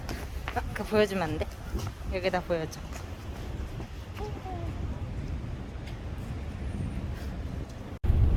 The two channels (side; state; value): both; identical; correlation 1.00